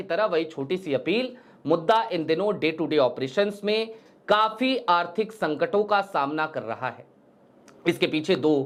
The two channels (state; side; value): identical; both; correlation 1.00